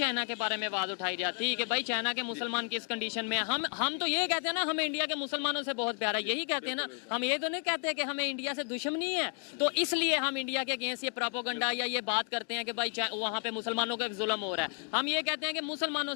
के बारे में आवाज उठाई जाती कि भाई चाइना के मुसलमान किस कंडीशन में? हम तो ये कहते हैं ना, हमें इंडिया के मुसलमानों से बहुत प्यार है, यही कहते हैं ना, हम ये तो नहीं कहते कि हमें इंडिया से दुश्मनी है, तो इसलिए हम इंडिया के अगेंस्ट ये प्रोपेगेंडा या ये बात करते हैं कि भाई वहाँ पे मुसलमानों का जुल्म हो रहा है। हम ये कहते हैं कि मुसलमानों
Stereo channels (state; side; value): quieter; right; 39.7 dB